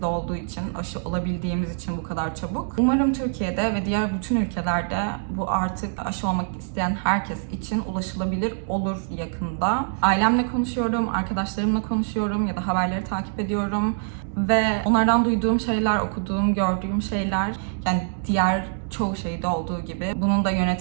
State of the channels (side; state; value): left; silent; digital silence